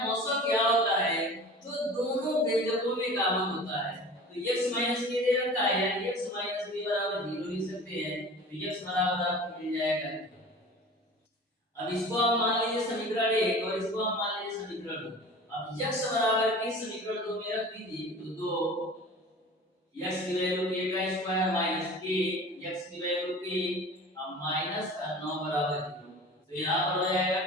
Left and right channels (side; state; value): both; normal; correlation 0.39